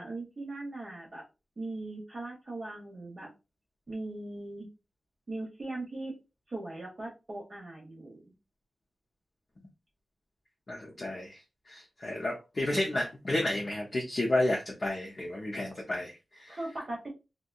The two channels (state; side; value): normal; both; correlation 0.94